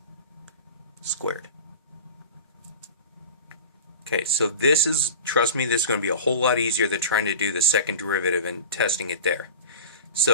squared. Okay, so this is, trust me, this is going to be a whole lot easier than trying to do the second derivative and testing it there.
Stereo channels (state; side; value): inverted; both; correlation -0.35